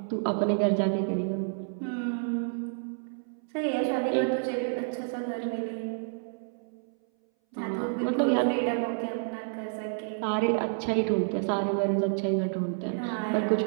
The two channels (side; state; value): left; silent; 58 dB below the other